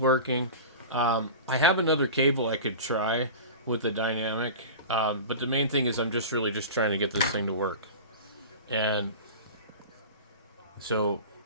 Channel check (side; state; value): both; inverted; correlation -0.32